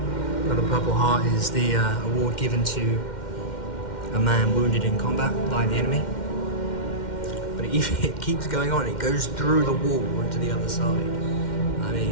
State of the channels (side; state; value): right; late; 2.1 ms